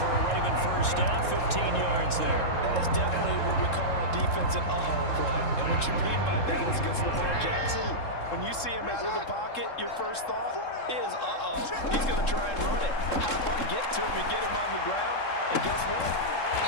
a Raven first down, 15 yards there. That is definitely what we call our defense an uh-oh play. And what you mean by that is against Lamar Jackson, when you see him out of the pocket, your first thought is, uh-oh, he's going to try and run it. How do I get to him and get him on the ground? And guess what?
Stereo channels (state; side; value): late; right; 3.7 ms